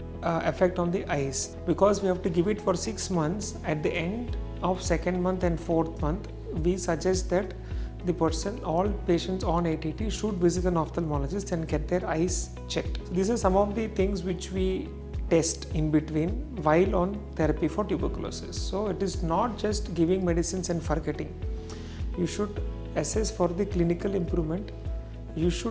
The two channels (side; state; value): both; identical; correlation 1.00